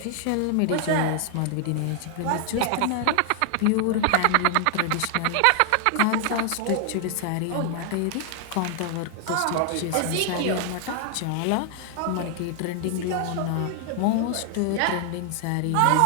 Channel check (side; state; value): both; different; correlation 0.00